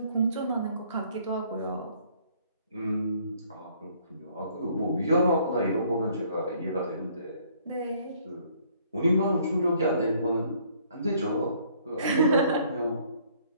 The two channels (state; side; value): inverted; both; correlation -0.62